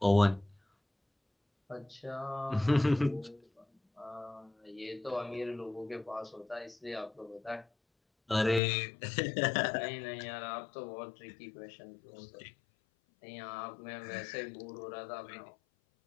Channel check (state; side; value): drops out; right; at 8.6 s